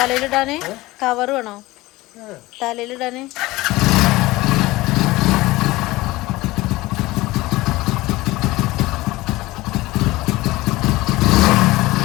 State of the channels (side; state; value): right; quieter; 19.5 dB